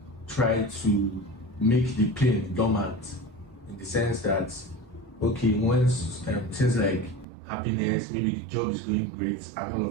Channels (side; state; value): left; drops out; at 7.2 s